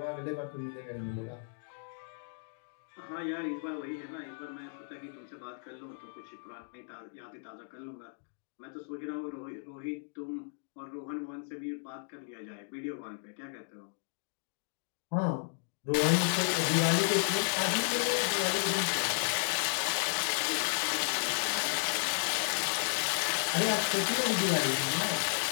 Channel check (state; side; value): silent; right; digital silence